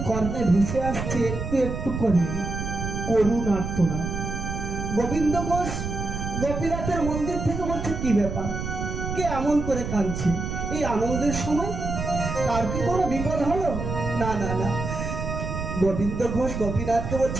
কর্ণে ভেসে আসছে একটু একটু করে করুণ আর্তনা। গোবিন্দ ঘোষ গোপীনাথের মন্দির থেকে বলছে কি ব্যাপার, কে এমন করে কাঁদছে এই আনন্দের সময়? তার কি কোনো বিপদ হলো? না না না। গোবিন্দ ঘোষ গোপীনাথকে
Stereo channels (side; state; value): right; noise; rumble, 5 dB below the sound